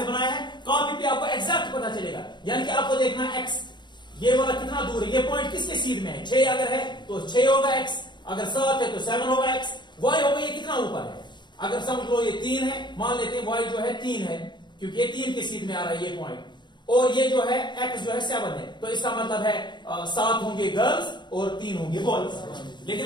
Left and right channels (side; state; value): right; late; 0.22 ms